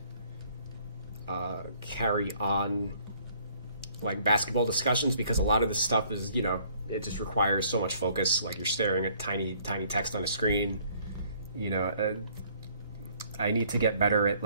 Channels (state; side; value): inverted; both; correlation -0.61